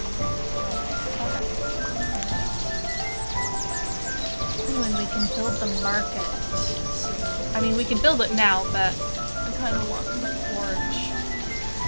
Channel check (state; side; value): inverted; both; correlation -1.00